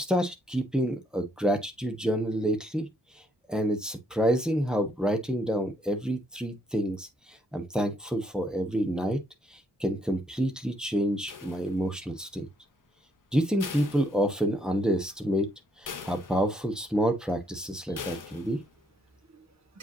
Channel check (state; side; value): normal; both; correlation 0.72